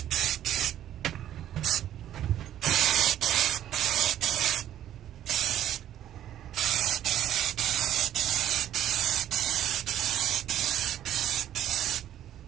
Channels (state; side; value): quieter; left; 11.7 dB